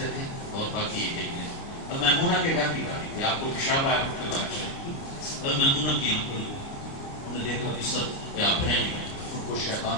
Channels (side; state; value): right; late; 29 ms